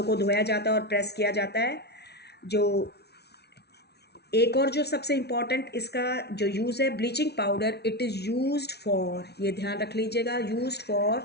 को धोया जाता है और प्रेस किया जाता है। जो एक और जो सबसे इम्पॉर्टेंट इसका जो यूज़ है bleaching powder, it is used for, ये ध्यान रख लीजिएगा, used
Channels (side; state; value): right; late; 0.49 ms